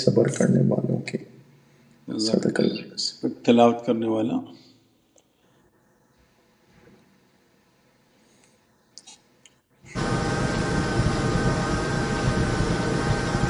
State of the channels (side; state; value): both; identical; correlation 1.00